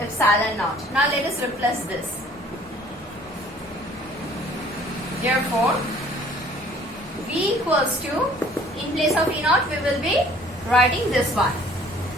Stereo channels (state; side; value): normal; both; correlation 0.54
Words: epsilon naught. Now let us replace this. Therefore, V equals to, in place of E naught, we will be writing this one.